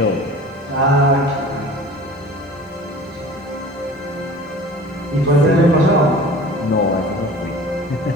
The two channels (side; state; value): both; normal; correlation 0.42